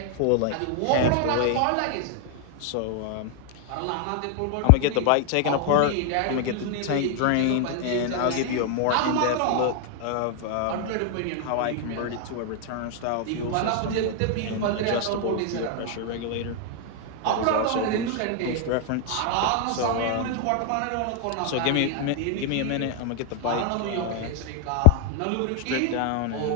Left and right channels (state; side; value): different; both; correlation 0.00